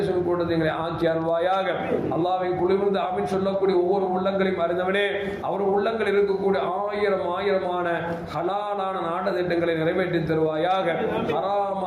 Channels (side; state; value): both; identical; correlation 1.00